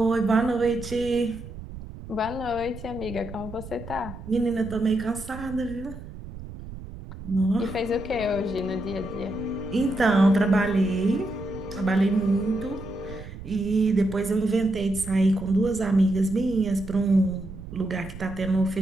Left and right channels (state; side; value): noise; right; rumble, 13 dB below the sound